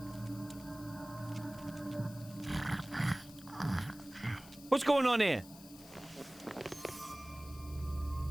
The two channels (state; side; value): noise; left; hiss, 18 dB below the sound